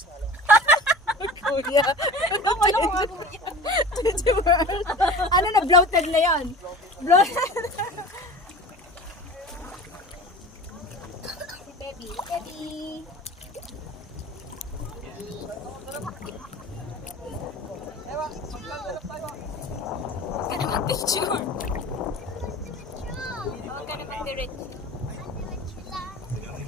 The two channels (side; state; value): both; normal; correlation 0.37